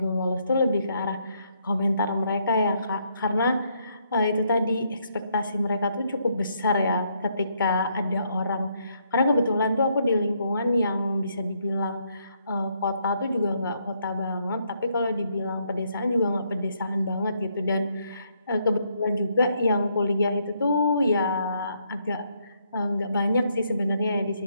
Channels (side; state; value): both; inverted; correlation -0.74